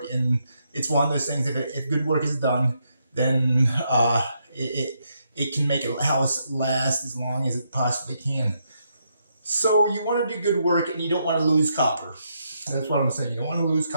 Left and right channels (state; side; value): inverted; both; correlation -0.78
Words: And it's one of those things, if good work is done, then it can make a house last as long as it possibly can. So you want to do good work and you don't want to lose copper. That's what I'm saying. You don't want to lose